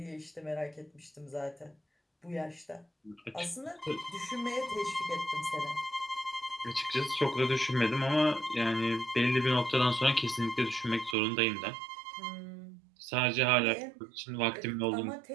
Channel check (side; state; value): left; drops out; at 11.2 s